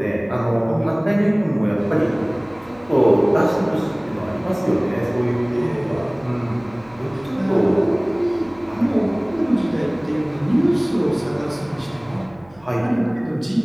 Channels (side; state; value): right; noise; hum, 27 dB below the sound